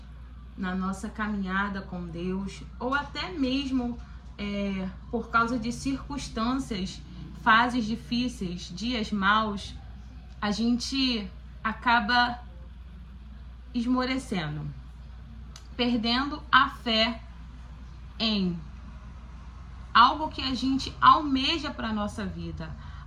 na nossa caminhada com Deus, ou até mesmo por causa de circunstâncias, fases difíceis, dias maus, a gente acaba esmorecendo, perdendo a fé em algo que a gente almeja para a nossa vida,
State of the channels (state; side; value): identical; both; correlation 1.00